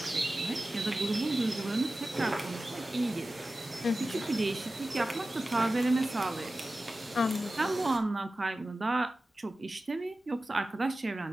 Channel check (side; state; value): both; normal; correlation 0.95